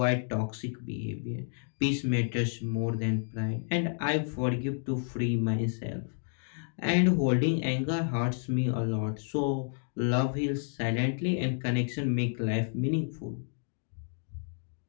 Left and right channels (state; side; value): silent; right; digital silence